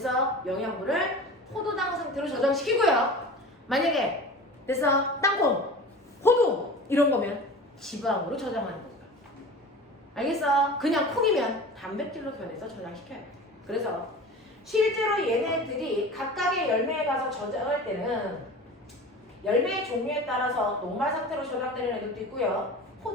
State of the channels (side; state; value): both; normal; correlation 0.36